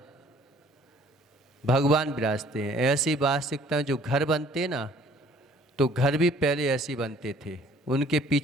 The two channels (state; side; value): normal; both; correlation 0.56